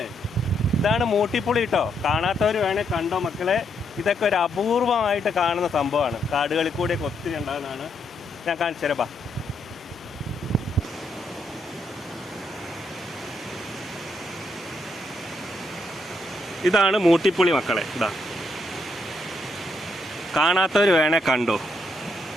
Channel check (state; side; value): normal; both; correlation 0.77